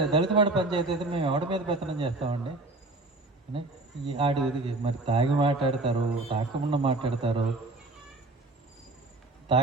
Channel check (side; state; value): left; quieter; 3.0 dB